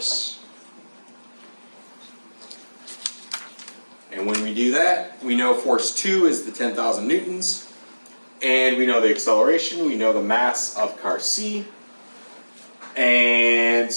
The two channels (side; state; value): both; inverted; correlation -1.00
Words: And when we do that, we know force 2 is the 10,000 newtons, and we know the acceleration, we know the mass of car C, and